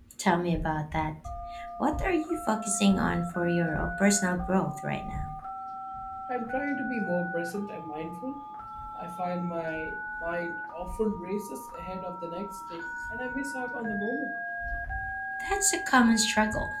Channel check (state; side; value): identical; both; correlation 1.00